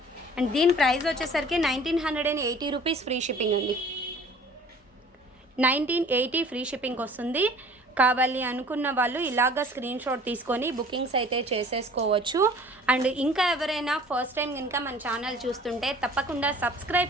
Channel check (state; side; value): normal; both; correlation 0.49